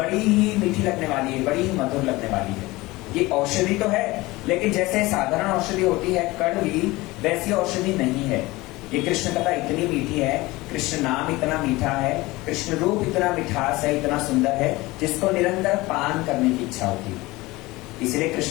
ही मीठी लगने वाली है, बड़ी ही मधुर लगने वाली है। ये औषधि तो है, लेकिन जैसे साधारण औषधि होती है कड़वी, वैसी औषधि नहीं है। ये कृष्ण कथा इतनी मीठी है, कृष्ण नाम इतना मीठा है, कृष्ण रूप इतना मिठास है, इतना सुंदर है, जिसको निरंतर पान करने की इच्छा होती है। इसलिए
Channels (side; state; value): right; quieter; 20.7 dB